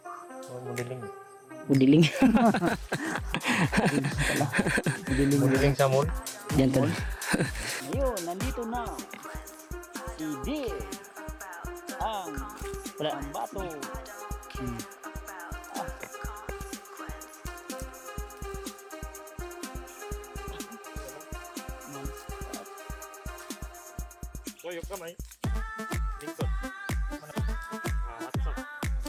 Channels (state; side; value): identical; both; correlation 1.00